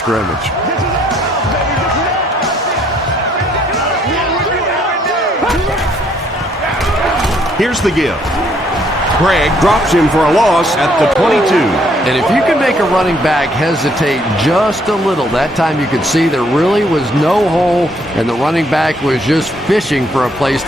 Here's the give. Craig drops him for a loss at the 22. And if you can make a running back hesitate just a little, that time you could see there really was no hole and the running back was just fishing for a place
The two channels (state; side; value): normal; both; correlation 0.67